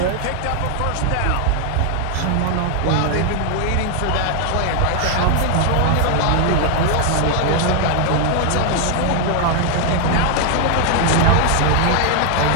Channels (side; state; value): both; different; correlation 0.00